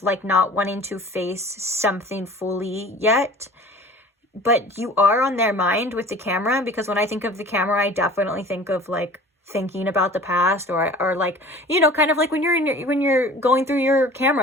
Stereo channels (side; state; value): both; normal; correlation 0.44